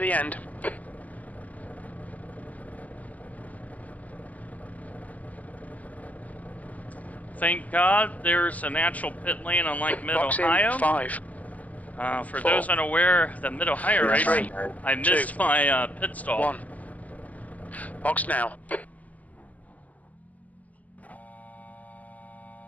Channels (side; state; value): right; late; 0.074 ms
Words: end. Thank God there's a natural pit lane unlike Box Mid-Ohio. in 5. For 4, those unaware, the Mid-Ohio race, 3, I missed 2, my pit stall. 1. Box now.